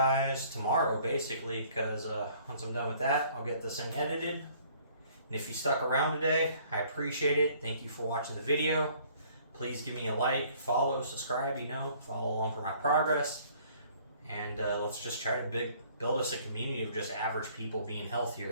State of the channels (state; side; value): inverted; both; correlation -0.57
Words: tomorrow, basically, because once I'm done with that, I'll get this thing edited. And if you stuck around today, I appreciate it. Thank you for watching the video. Please give me a like, follow, subscribe, you know, follow along for my progress. And let's just try to build us a community of just average people being